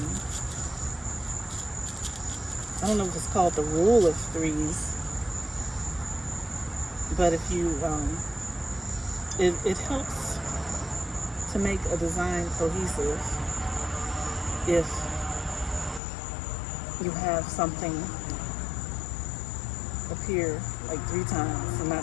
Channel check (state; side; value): drops out; right; at 16.0 s